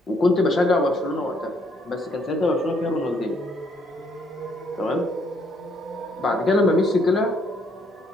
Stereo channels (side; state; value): both; normal; correlation 0.69